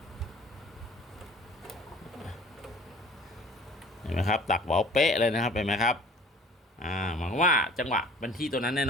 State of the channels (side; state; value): both; normal; correlation 0.49